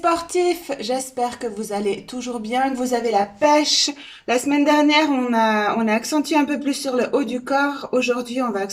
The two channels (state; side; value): identical; both; correlation 1.00